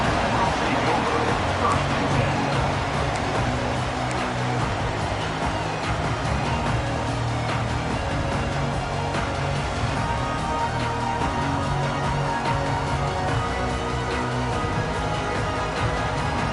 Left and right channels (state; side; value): identical; both; correlation 1.00